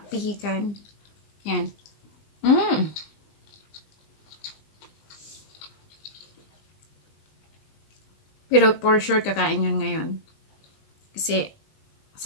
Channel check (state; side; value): late; right; 20 ms